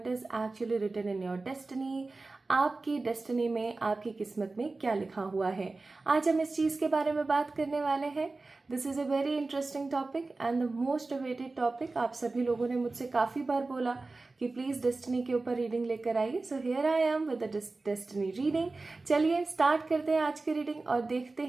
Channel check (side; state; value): left; quieter; 3.5 dB